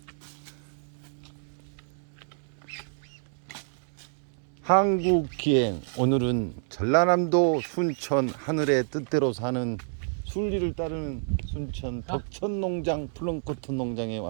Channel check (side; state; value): left; silent; digital silence